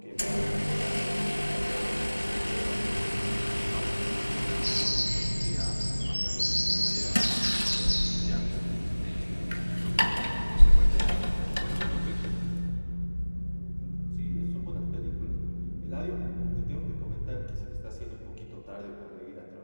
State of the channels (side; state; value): both; inverted; correlation -1.00